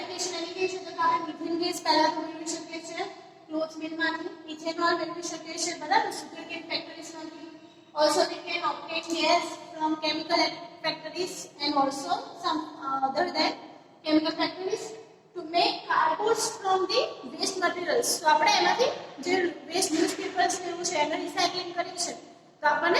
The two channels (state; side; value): identical; both; correlation 1.00